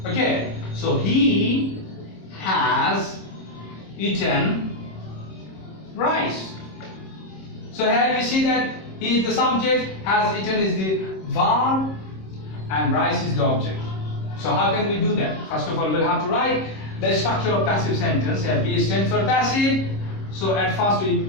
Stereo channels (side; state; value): right; late; 26 ms